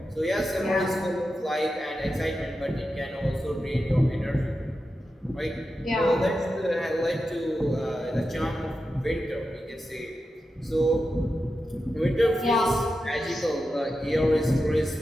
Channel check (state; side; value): normal; both; correlation 0.90